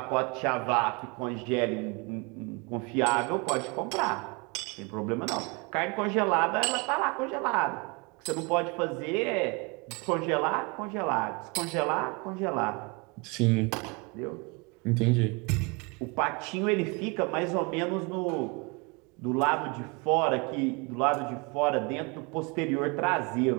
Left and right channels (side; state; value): left; quieter; 29.6 dB